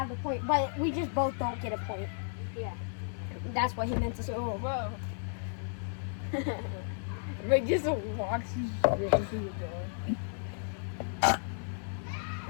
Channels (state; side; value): silent; right; 56 dB below the other